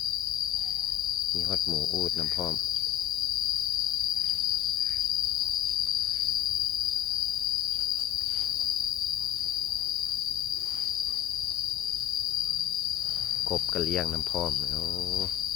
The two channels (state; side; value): quieter; right; 12.1 dB